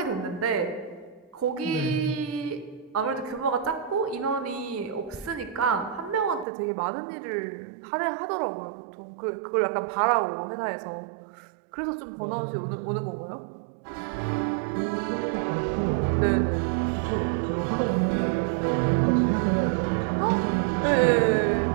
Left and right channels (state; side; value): drops out; left; at 6.5 s